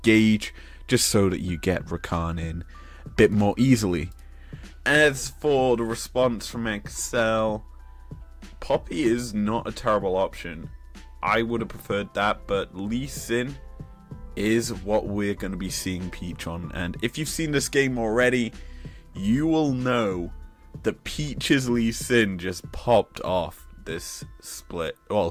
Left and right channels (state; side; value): identical; both; correlation 1.00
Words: just so that you get Rakan in a bit more easily. As for the response from XL, Poppy is not a terrible option. I would have preferred that, but Lee Sin is what we're going to be seeing Peach on. And if you've seen this game already, you will know that Peach's Lee Sin just popped off this